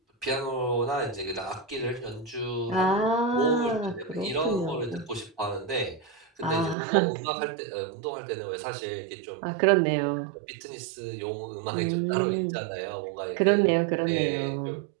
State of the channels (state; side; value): drops out; left; at 6.8 s